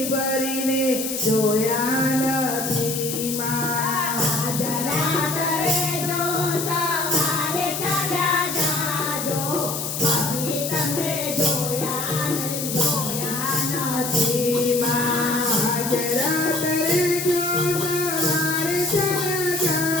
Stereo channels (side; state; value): left; noise; hiss, 4 dB below the sound